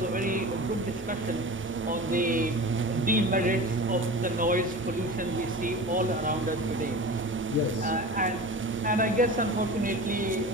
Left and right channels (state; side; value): normal; both; correlation 0.33